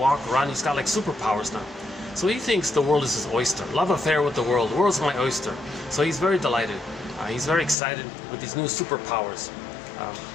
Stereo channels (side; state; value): right; drops out; at 7.8 s